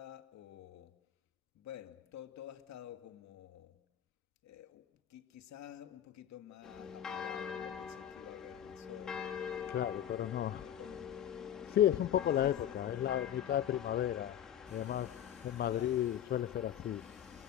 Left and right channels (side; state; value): right; quieter; 10.5 dB